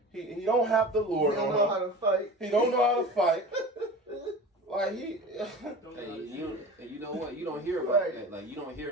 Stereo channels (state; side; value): normal; both; correlation 0.35